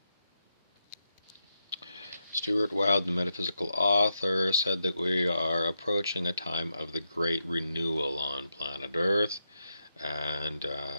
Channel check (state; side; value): inverted; both; correlation -0.86